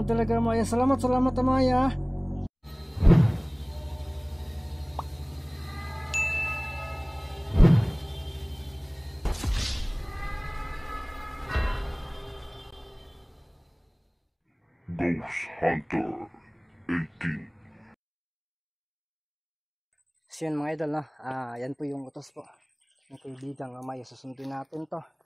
talaga, Maya. Salamat, Maya. Ghost Hunter 18. So yan mga idol, no? Yan po yung utos po ng kaibigang Amaya. Susundin natin to.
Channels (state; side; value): identical; both; correlation 1.00